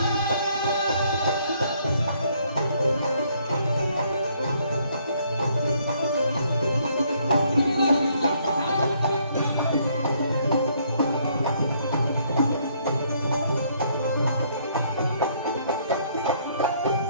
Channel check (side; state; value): both; inverted; correlation -0.67